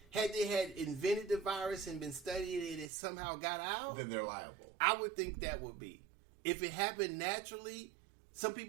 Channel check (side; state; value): left; drops out; at 2.9 s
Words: had they had invented the virus and been studying it and it somehow got out, Then they're liable. I would think that would be. If it happened naturally, some